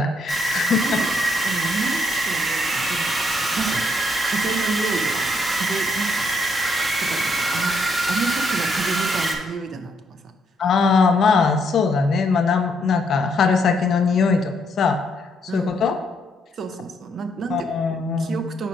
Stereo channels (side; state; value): both; normal; correlation 0.74